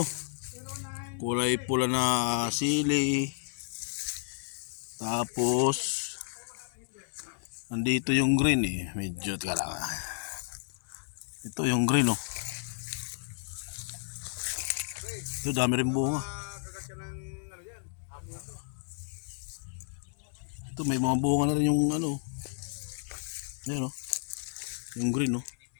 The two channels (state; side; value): silent; right; digital silence